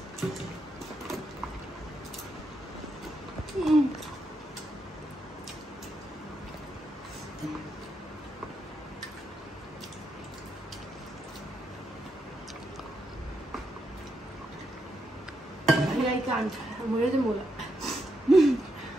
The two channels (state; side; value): normal; both; correlation 0.81